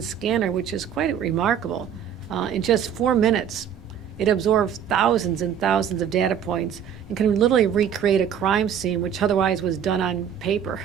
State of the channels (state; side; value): quieter; left; 8.6 dB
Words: which is quite remarkable. In just 4 minutes, it absorbs thousands and thousands of data points and can literally recreate a crime scene, which otherwise was done on paper